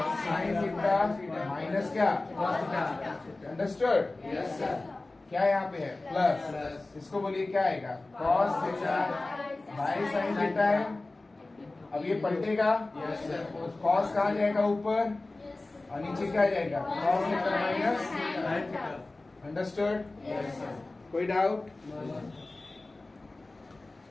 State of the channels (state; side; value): quieter; right; 3.1 dB